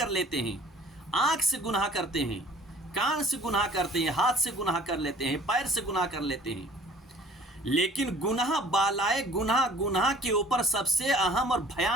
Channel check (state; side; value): normal; both; correlation 0.51